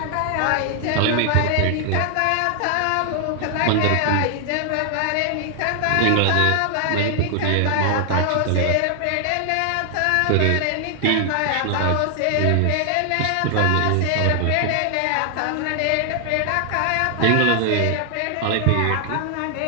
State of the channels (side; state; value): both; different; correlation 0.00